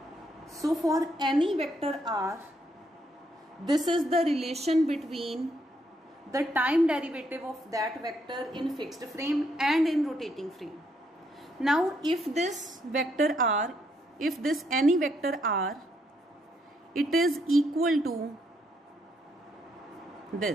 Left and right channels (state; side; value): normal; both; correlation 0.74